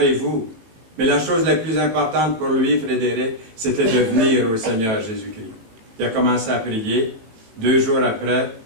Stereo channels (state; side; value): late; left; 18 ms